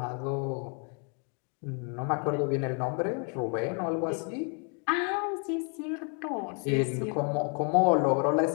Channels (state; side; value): quieter; right; 38.7 dB